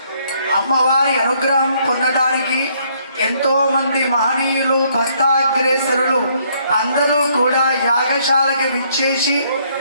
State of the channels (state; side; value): inverted; both; correlation -0.68